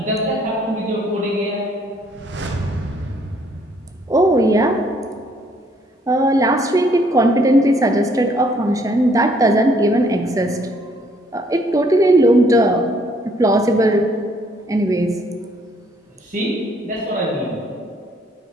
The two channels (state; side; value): normal; both; correlation 0.65